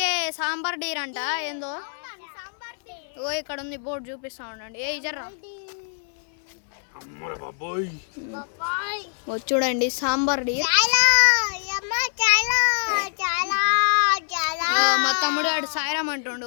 సాంబార్ డీర్ అంట. ఏందో ఓ ఇక్కడ ఉంది బోర్డు చూపిస్తా ఉండండి. ఏ జర్రా చూడండి సాంబార్ డీర్. మా తమ్ముడు వాడు సాయిరామ్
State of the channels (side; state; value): right; silent; 60 dB below the other